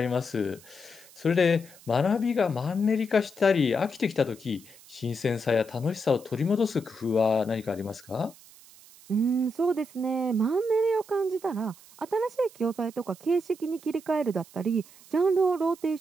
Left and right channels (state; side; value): noise; right; hiss, 23 dB below the sound